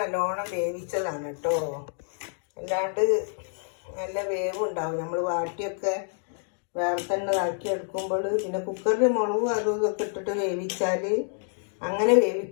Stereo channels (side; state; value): right; silent; 60 dB below the other